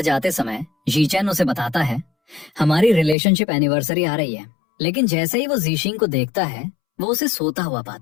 जाते समय जी चैन उसे बताता है, हमारी रिलेशनशिप एनिवर्सरी आ रही है। लेकिन जैसे ही वो जीशिंग को देखता है वो उसे सोता हुआ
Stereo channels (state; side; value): drops out; right; at 3.2 s